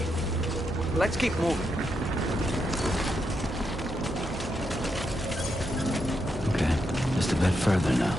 Let's keep moving. Okay, just a bit further now.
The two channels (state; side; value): normal; both; correlation 0.82